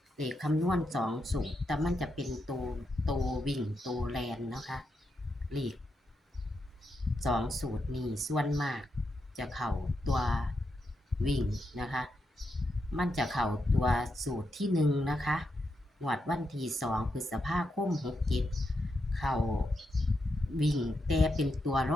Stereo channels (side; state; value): both; normal; correlation 0.84